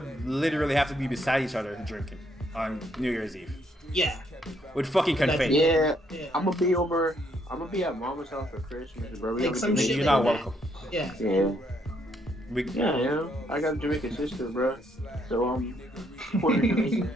literally have to be beside each other drinking on New Year's Eve. Yeah. With fucking confetti. Yeah. I'm gonna be at Mama's house for Christmas, bro. Like some shit. You're like not that. welcome. Yeah. Yeah. I got a Jamaican sister, bro. So Puerto Rican.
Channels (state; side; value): normal; both; correlation 0.72